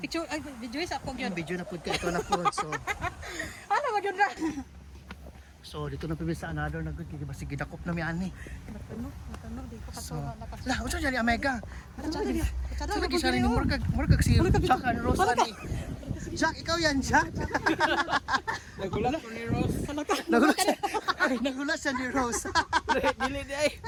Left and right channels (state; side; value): identical; both; correlation 1.00